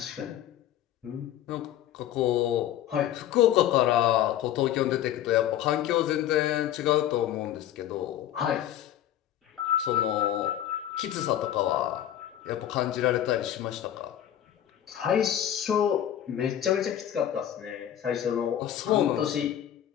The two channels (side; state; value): right; quieter; 11.4 dB